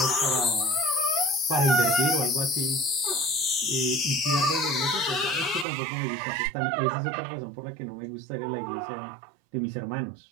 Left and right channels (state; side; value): drops out; left; at 5.7 s